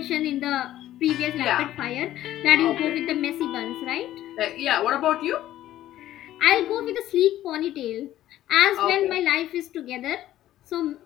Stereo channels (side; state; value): right; quieter; 13.5 dB